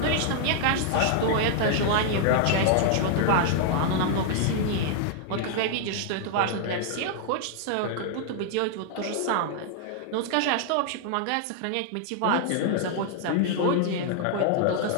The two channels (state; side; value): different; both; correlation -0.01